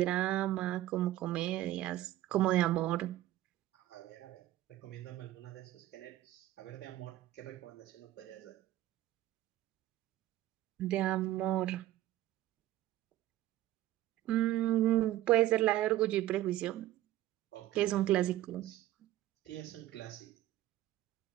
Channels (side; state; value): left; quieter; 14.4 dB